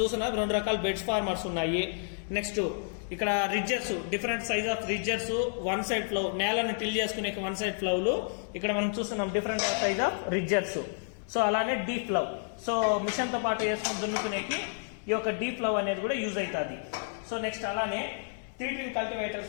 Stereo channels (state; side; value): silent; right; digital silence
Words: చూస్తున్నా 2 రకాల బెడ్స్ ఫార్మర్స్ ఉన్నాయి. నెక్స్ట్ ఇక్కడ ridgers, different size of ridgers, one side plough, నేలను టిల్ చేసుకునే వన్ సైడ్ ఫ్లౌలు ఇక్కడ మనం చూస్తున్నాం, different size of ridgers. So అలానే డీప్ ఫ్లౌ, సో మిషన్ తో పాటు వేసుకుని దున్నుకునేకి ఈ యొక్క డీప్ ఫ్లౌ అనేది కూడా యూజ్ అవుతుంది. సో నెక్స్ట్ అలానే 3-tin